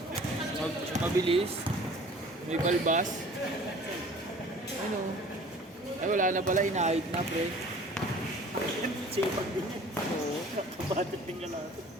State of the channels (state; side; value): normal; both; correlation 0.48